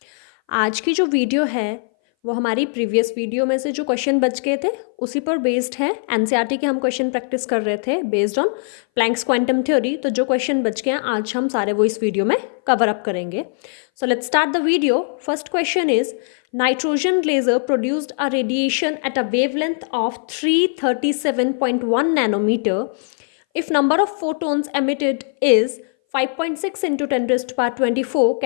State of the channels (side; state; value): right; silent; 60 dB below the other